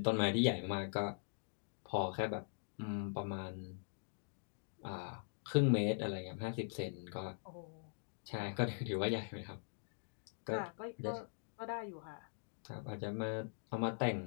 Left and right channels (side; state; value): right; silent; digital silence